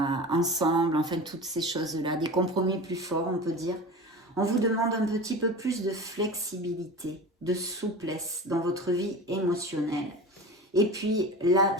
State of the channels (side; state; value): both; normal; correlation 0.32